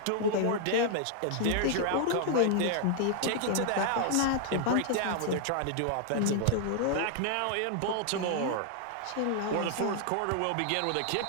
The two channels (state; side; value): different; both; correlation -0.01